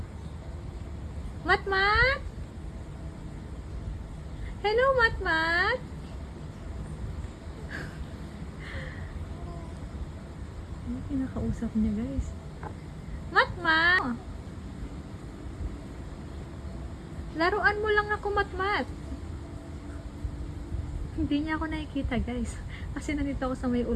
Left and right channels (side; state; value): both; identical; correlation 1.00